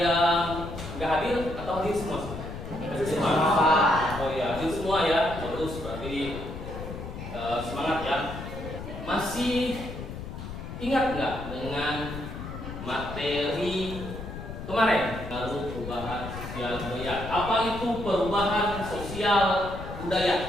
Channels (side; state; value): left; noise; rumble, 9 dB below the sound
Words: yang nggak hadir atau hadir semua? Hadir semua. Oh ya, hadir semua ya. Terus berarti semangat ya. Masih ingat nggak dengan materi kemarin? Baru perubahan sosial budaya. Apa itu perubahan sosial